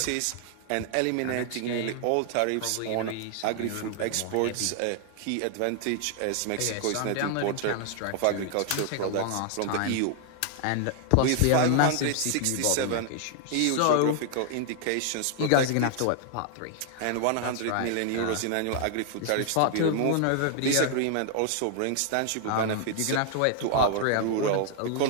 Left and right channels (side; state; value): both; different; correlation 0.00